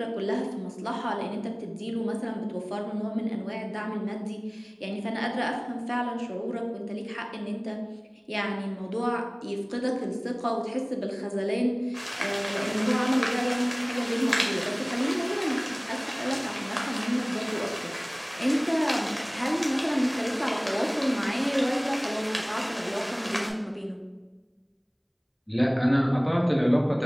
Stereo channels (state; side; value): identical; both; correlation 1.00